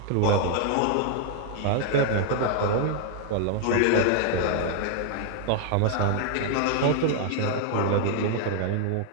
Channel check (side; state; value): both; different; correlation 0.00